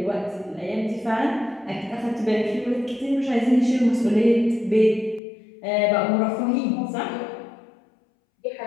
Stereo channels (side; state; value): right; drops out; at 5.2 s